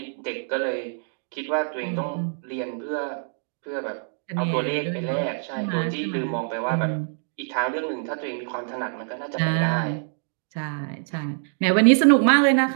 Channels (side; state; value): left; silent; digital silence